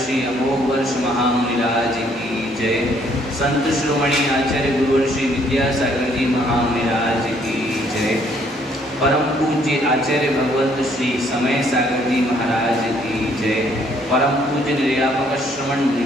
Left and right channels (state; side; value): normal; both; correlation 0.65